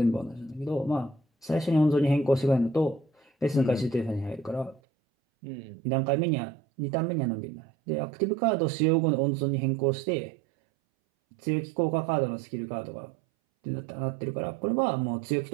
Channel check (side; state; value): left; drops out; at 4.8 s